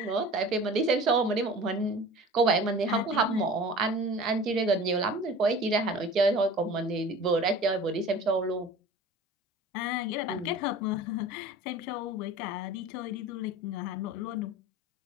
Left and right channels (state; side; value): normal; both; correlation 0.41